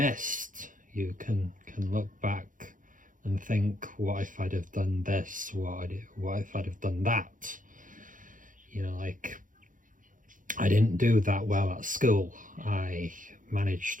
You can look back and think, what if I'd have done this? What if I'd have done that? Like, I didn't do that well at school. I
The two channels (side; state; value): left; late; 0.38 ms